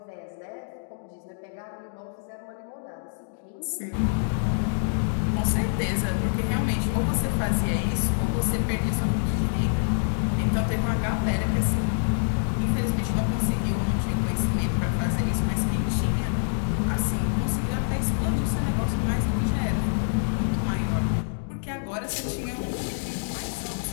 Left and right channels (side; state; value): right; silent; digital silence